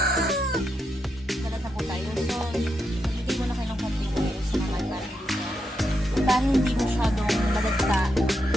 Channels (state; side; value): normal; both; correlation 0.83